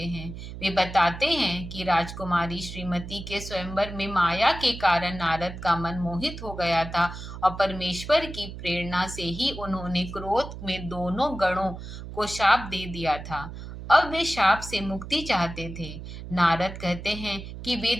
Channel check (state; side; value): noise; right; hum, 10 dB below the sound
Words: हैं। वे बताते हैं कि राजकुमारी श्रीमती के स्वयंवर में माया के कारण नारद का मन मोहित हो गया था और परमेश्वर की प्रेरणा से ही उन्होंने क्रोध में दोनों गणों को शाप दे दिया था। अब वे शाप से मुक्ति चाहते थे। नारद कहते हैं कि वे